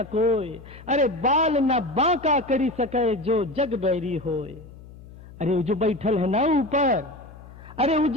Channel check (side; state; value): left; noise; hum, 19 dB below the sound